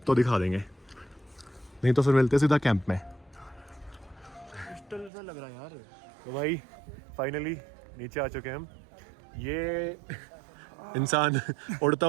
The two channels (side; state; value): left; drops out; at 5.1 s